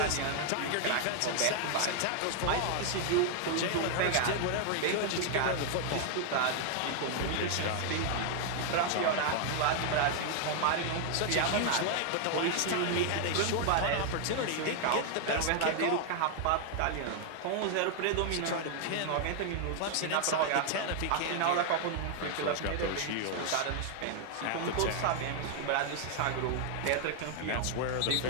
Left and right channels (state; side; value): different; both; correlation 0.00